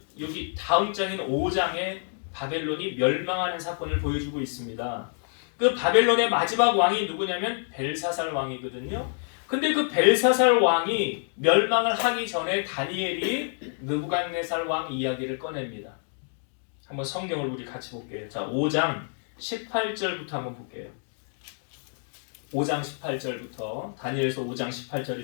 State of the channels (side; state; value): right; silent; 60 dB below the other